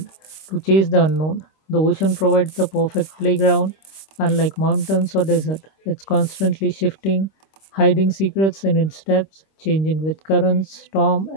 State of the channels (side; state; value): right; late; 26 ms